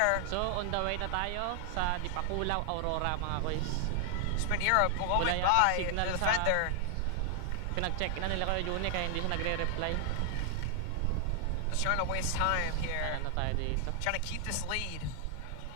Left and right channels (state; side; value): different; both; correlation 0.00